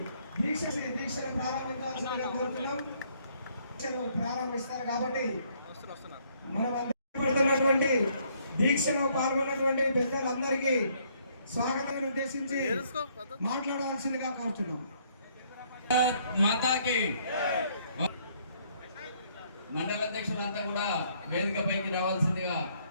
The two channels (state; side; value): inverted; both; correlation -0.67